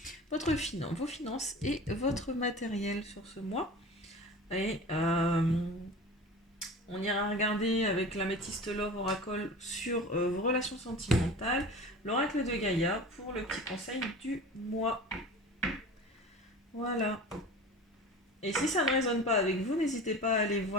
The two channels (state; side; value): normal; both; correlation 0.36